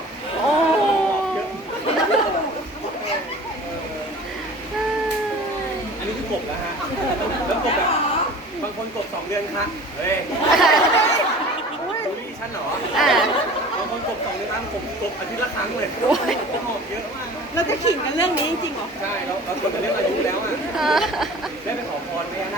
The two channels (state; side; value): normal; both; correlation 0.42